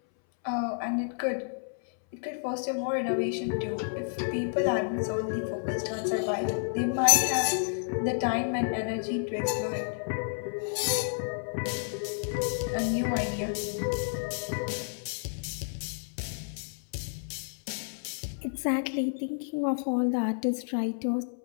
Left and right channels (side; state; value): right; silent; 57 dB below the other